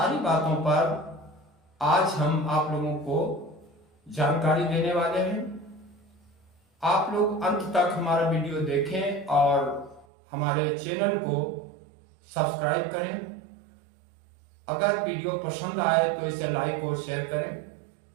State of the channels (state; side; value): drops out; left; at 10.1 s